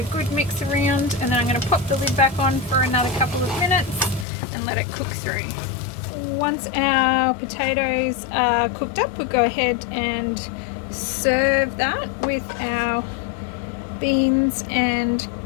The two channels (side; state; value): right; drops out; at 4.2 s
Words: good mix around, and then I'm going to pop the lid back on for another couple of minutes and let it cook through. Once our potatoes are cooked up, we'll go ahead and serve that with our beans and